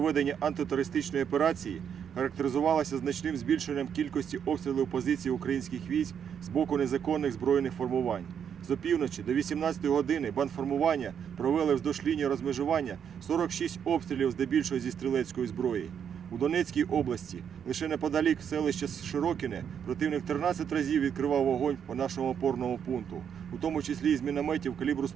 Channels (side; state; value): left; quieter; 8.0 dB